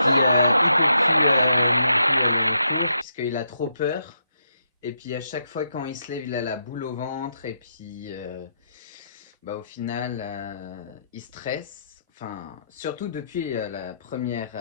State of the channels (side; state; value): both; inverted; correlation -0.79